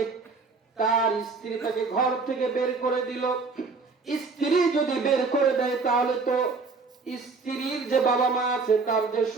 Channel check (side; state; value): left; quieter; 4.3 dB